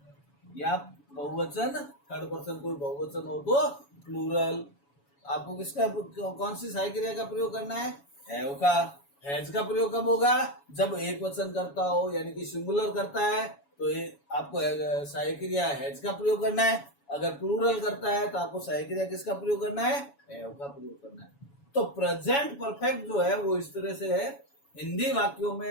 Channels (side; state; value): right; late; 7.1 ms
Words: या बहुवचन थर्ड पर्सन कोई बहुवचन हो तो प्लूरल। आपको किसका कौन सी सहायक क्रिया का प्रयोग करना है? हैव का। हैज का प्रयोग कब होगा? जब एक वचन करता हो, यानी कि सिंगुलर करता है तो आपको सहायक क्रिया हैज का प्रयोग करना है। अगर प्लूरल करता है तो आपको सहायक क्रिया किसका प्रयोग करना है? हैव का प्रयोग करना है। तो प्रेजेंट परफेक्ट जो है वो इस तरह से है। हिंदी वाक्यों